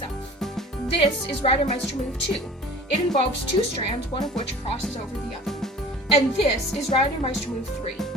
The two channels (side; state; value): both; normal; correlation 0.44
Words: This is Reidemeister move 2. It involves 2 strands, one of which crosses over the other. And this is Reidemeister move 3.